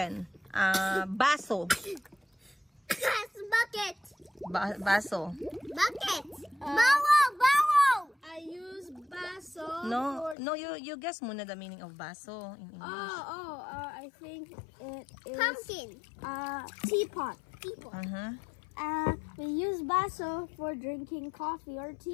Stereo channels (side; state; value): right; drops out; at 10.4 s